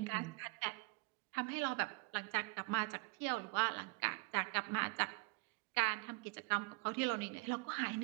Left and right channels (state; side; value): quieter; left; 28.1 dB